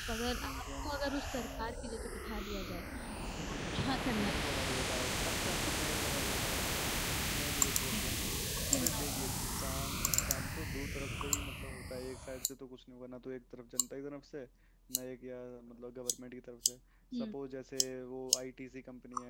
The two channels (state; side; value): identical; both; correlation 1.00